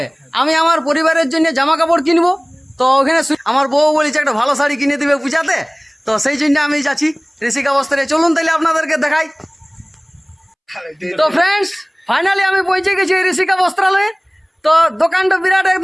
আমি আমার পরিবারের জন্য জামা কাপড় কিনবো। তো ওখানে আমার বউ বলেছে একটা ভালো শাড়ি কিনে দিবে পূজাতে, তো সেই জন্য আমি যাচ্ছি ঋষিকা বস্ত্রে। চলুন তাহলে আপনাদেরকে দেখাই। তো ফ্রেন্ডস, ফাইনালি আমি পৌঁছে গেছি ঋষিকা বস্ত্রালয়ে। তো দোকানটা বিরাট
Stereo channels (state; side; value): identical; both; correlation 1.00